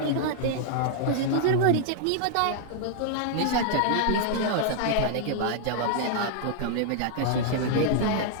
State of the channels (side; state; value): both; different; correlation -0.01